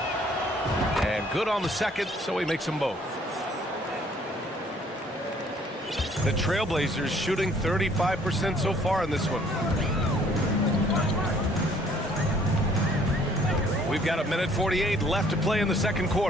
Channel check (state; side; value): normal; both; correlation 0.60